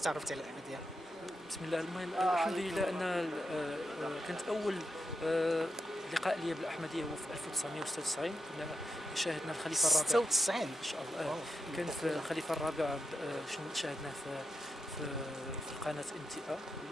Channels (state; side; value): normal; both; correlation 0.85